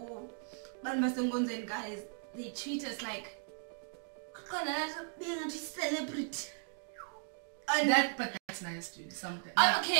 Guys, they treat us like being a celebrity. But that's nice, dude. Something.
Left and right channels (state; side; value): silent; left; 53 dB below the other